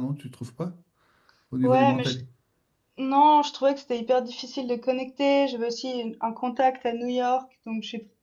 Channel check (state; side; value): identical; both; correlation 1.00